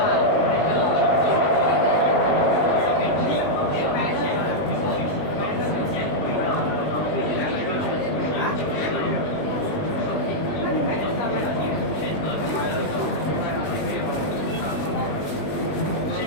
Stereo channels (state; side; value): late; right; 20 ms